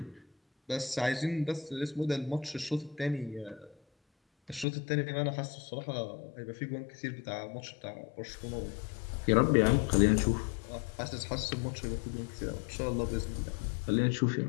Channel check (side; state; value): right; drops out; at 4.7 s